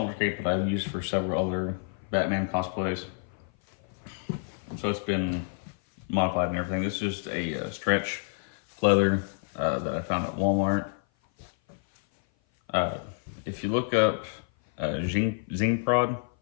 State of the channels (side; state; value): right; silent; 56 dB below the other